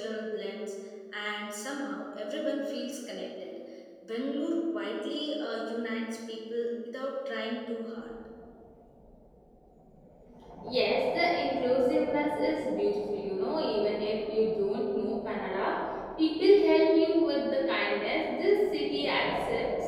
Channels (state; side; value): identical; both; correlation 1.00